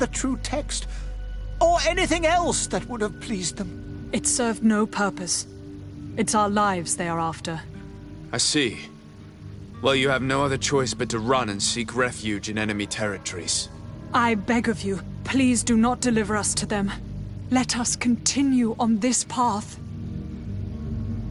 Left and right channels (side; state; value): both; identical; correlation 1.00